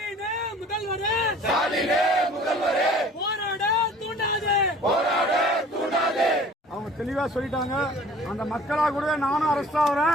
ஸ்டாலினே முதல்வரே போராட தூண்டாதே போராட தூண்டாதே. அவங்க தெளிவா சொல்லிட்டாங்க. அந்த மக்களா கூட நானும் அரெஸ்ட்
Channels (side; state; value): both; normal; correlation 0.49